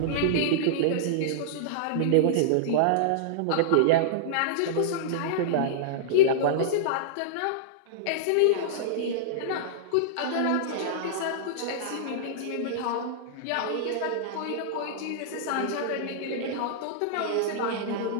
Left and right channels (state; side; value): different; both; correlation -0.02